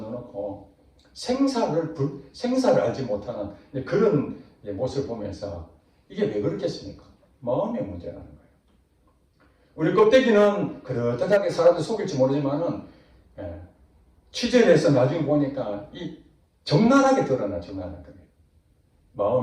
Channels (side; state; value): both; identical; correlation 1.00